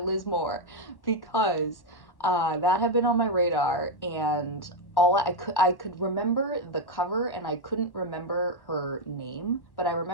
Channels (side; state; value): right; late; 1.1 ms